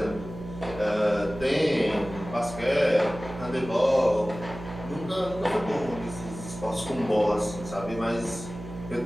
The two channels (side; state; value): right; noise; hum, 12 dB below the sound